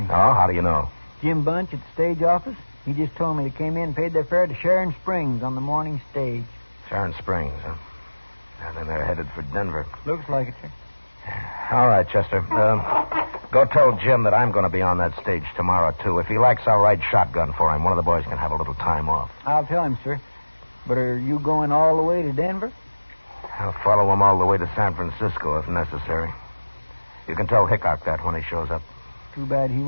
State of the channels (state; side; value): inverted; both; correlation -1.00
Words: Oh, how do you know? Jim Bunch at the stage office. He just told me they came in and paid their fare to Sharon Springs on the morning stage. Sharon Springs, huh? And then they're headed for Denver. Looks like it, sir. All right, Chester. Go tell Jim that I'm going to be on that stage tomorrow, too. If he likes, I'll ride shotgun for him. One of the boys can have a little time off. I'll tell him, sir. But are you going all the way to Denver? I'll follow him all the way to San Francisco if necessary. You can tell Hickok that when he shows up. Too bad he